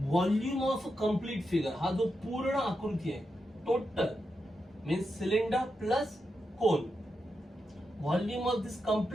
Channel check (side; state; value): both; normal; correlation 0.87